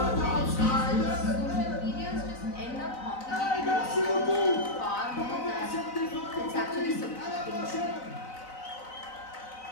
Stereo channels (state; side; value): late; right; 4.0 ms